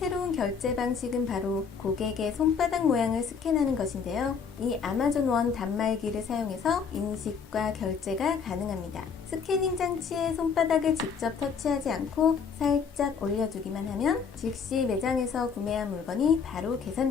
결제 방식은 바로 고객의 손바닥 모양을 스캔하는 것인데요. 이 아마존 원 단말기를 사용해서 인식과 결제가 가능합니다. 스캐닝 장치에 손바닥을 직접 터치하지 않고 살짝 올려주기만 하면 즉시 매장에서 구매한 물건이 바로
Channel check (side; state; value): right; quieter; 6.1 dB